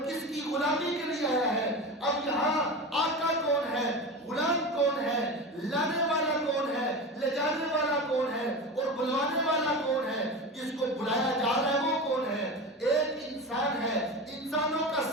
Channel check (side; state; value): both; normal; correlation 0.27